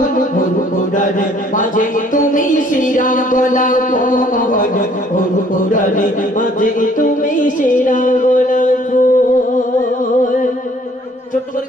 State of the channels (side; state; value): both; normal; correlation 0.59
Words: পুরারে মাঝে তুমি শিরা গোলাপ ফল, পুরারে মাঝে তুমি শিরা গোলাপ ফল। ছোট্ট করে